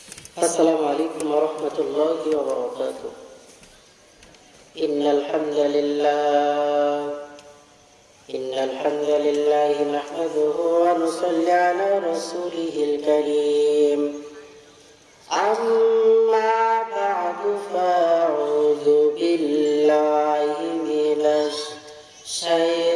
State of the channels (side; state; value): both; identical; correlation 1.00